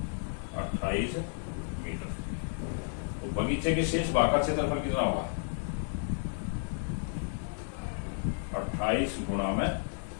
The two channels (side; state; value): right; silent; 56 dB below the other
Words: 28 मीटर। तो बगीचे के शेष भाग का क्षेत्रफल कितना होगा? 28 गुणा में